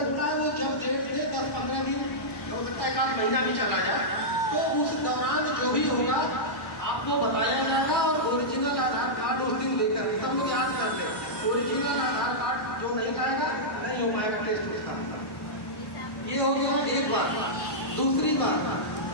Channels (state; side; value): late; right; 1.1 ms